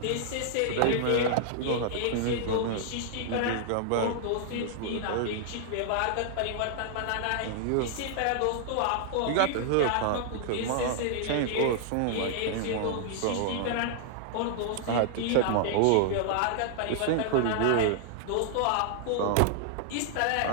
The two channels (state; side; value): different; both; correlation -0.01